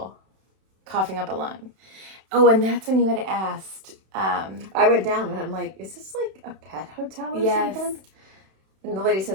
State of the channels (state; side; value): late; left; 31 ms